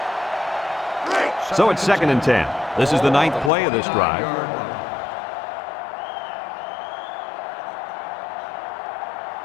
So it's 2nd and 10. This is the 9th play of this drive.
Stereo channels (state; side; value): drops out; right; at 3.5 s